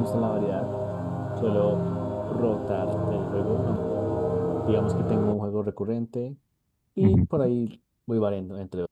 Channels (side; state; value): both; identical; correlation 1.00